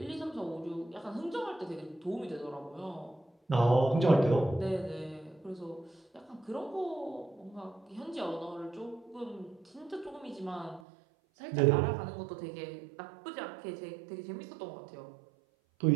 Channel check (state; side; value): drops out; left; at 10.8 s